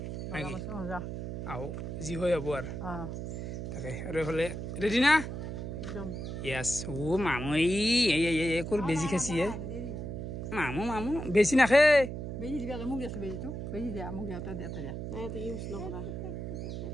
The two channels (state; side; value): noise; right; hum, 5 dB below the sound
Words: আহো যি হয় হ'ব আৰু তাকে আৰু এফালে ৰেডি না একদম ইয়াস ও মামু এই কোৰ বেজি খাইছি মামু বেছি নাখে বেজি দিবা মোক দিছো বেজিটো বেজি দিয়া মোক দিয়াতে দিয়াতে দিয়া নাই তো ইউজ নকৰা